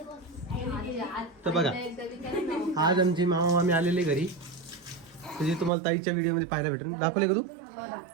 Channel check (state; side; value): drops out; left; at 5.7 s